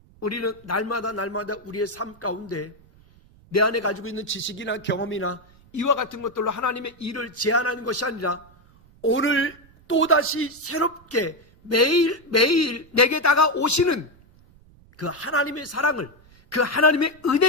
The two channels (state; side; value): noise; right; rumble, 27 dB below the sound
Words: 우리는 날마다 우리의 삶 가운데 내 안에 가지고 있는 지식이나 경험이나 이와 같은 것들로 하나님의 일을 제한하는 것이 아니라 오늘 또다시 새롭게 매일 내게 다가오시는 그 하나님의 사랑을, 그 하나님의